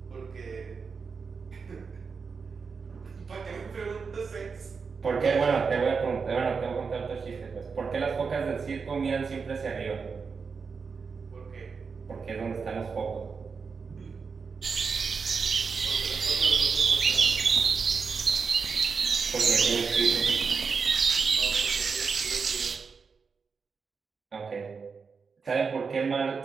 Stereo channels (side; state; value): left; quieter; 5.3 dB